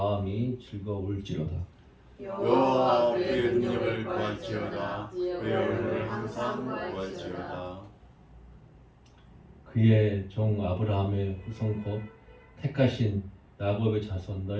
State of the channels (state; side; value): identical; both; correlation 1.00